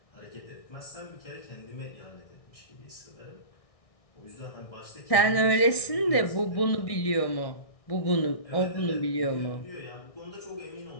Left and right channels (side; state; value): right; late; 1.6 ms